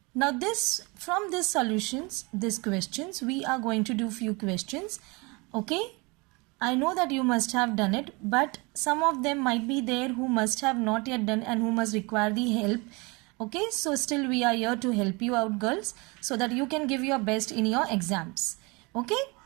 Now from these solutions, these questions, we are going to do few questions. Okay, I know that you must have done it, but some of them might be there who must have not yet done and who must require the help. Okay, so still we are here to help you out, girls, so that you can give your best in your exams. Okay,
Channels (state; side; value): quieter; left; 27.5 dB